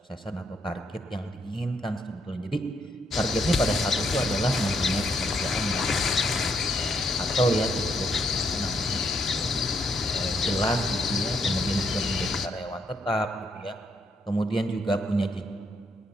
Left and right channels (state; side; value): normal; both; correlation 0.74